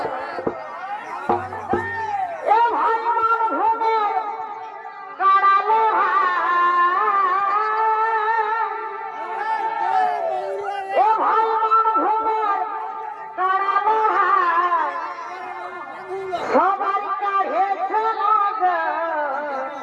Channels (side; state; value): both; identical; correlation 1.00